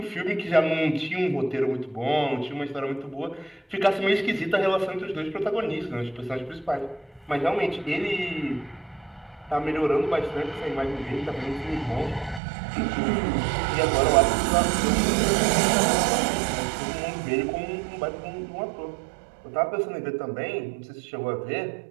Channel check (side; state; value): left; drops out; at 12.4 s